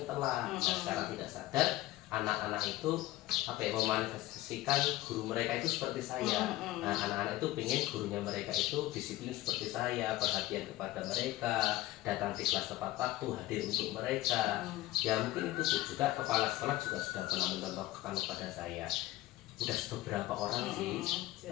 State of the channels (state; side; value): quieter; right; 16.8 dB